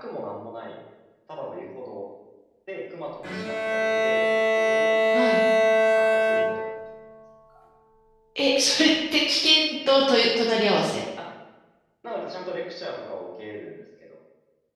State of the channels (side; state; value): both; identical; correlation 1.00